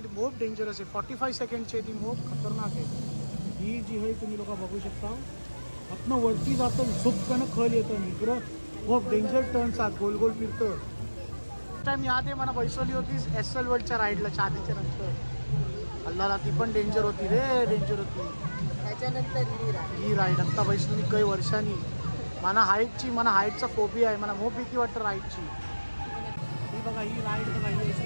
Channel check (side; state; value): both; inverted; correlation -1.00